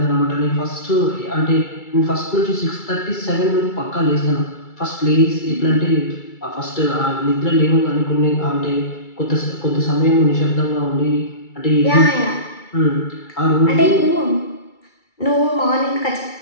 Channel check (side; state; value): right; late; 2.3 ms